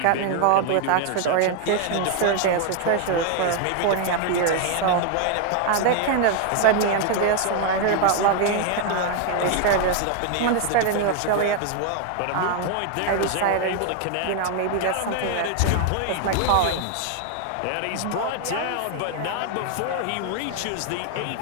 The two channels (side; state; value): both; different; correlation 0.00